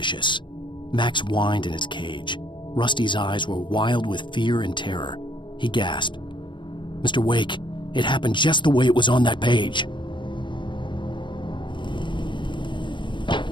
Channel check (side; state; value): right; late; 0.23 ms